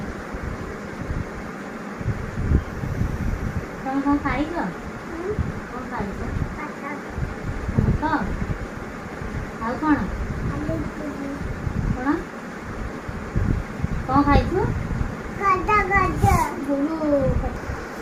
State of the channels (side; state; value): both; identical; correlation 1.00